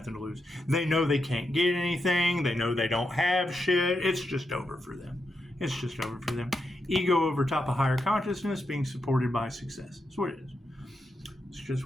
to lose. They know they can't get anything. They know they don't have shit. It's just over for them. It's just over for them. Ego over top of higher consciousness being supported by success. That's what it is. It's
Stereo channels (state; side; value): normal; both; correlation 0.85